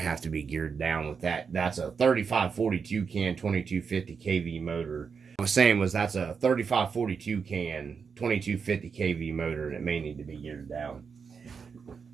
have to be geared down with that. That's a 3542 can 2250 kV motor. I was saying that's a 3542 can 2250 kV motor, and it may need to be geared down.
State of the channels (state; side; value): quieter; left; 5.9 dB